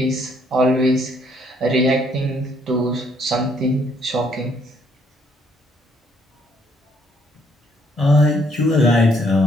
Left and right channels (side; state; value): both; normal; correlation 0.68